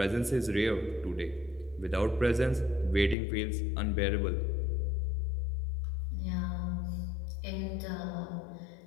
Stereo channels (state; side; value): drops out; right; at 3.2 s